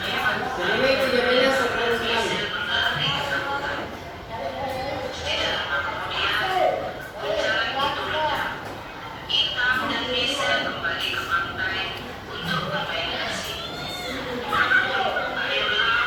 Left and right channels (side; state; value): both; identical; correlation 1.00